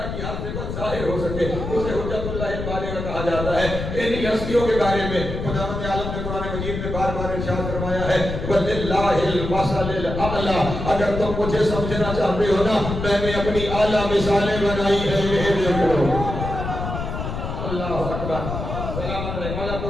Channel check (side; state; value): left; noise; rumble, 5 dB below the sound